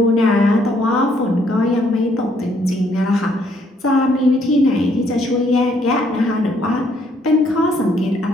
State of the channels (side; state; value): both; normal; correlation 0.68